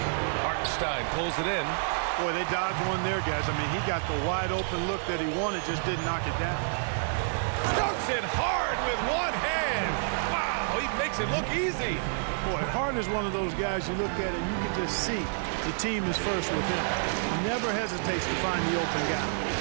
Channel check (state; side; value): silent; left; digital silence